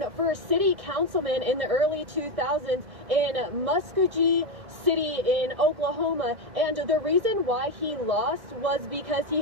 for city councilman in the early 2000s in Muskogee City in Oklahoma, and the reason why he lost was because he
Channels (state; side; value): late; left; 2.1 ms